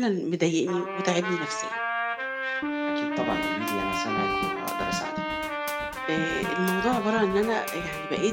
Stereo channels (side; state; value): both; identical; correlation 1.00